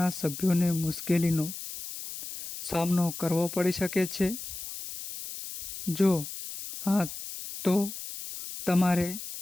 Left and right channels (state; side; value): noise; left; hiss, 9 dB below the sound